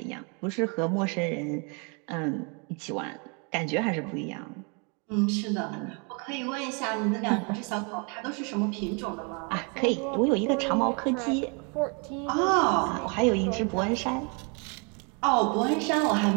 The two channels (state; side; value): quieter; left; 34.8 dB